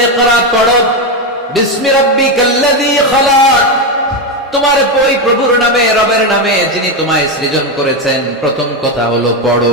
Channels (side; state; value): both; normal; correlation 0.09